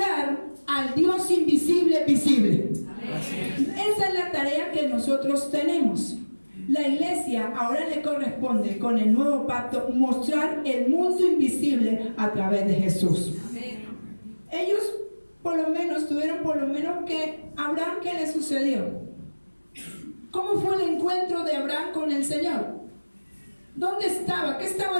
al Dios invisible visible. Esa es la tarea que nosotros tenemos. La iglesia ahora le corresponde con el nuevo pacto mostrar el mundo invisible a través de Jesús. Ellos tuvieron por lo menos que Abraham, ¿qué le sucedió? ¿Cómo fue el encuentro de Abraham con el Señor? ¿Dónde estaba? ¿Qué estaba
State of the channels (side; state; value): both; inverted; correlation -1.00